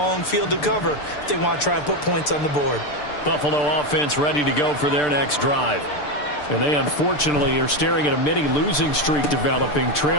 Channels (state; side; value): late; right; 6.8 ms